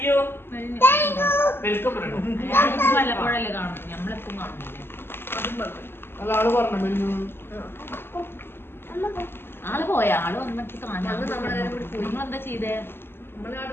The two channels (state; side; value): late; right; 0.11 ms